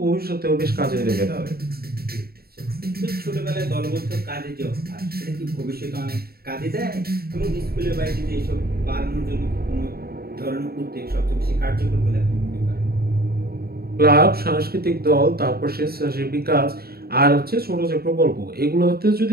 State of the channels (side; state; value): left; late; 0.45 ms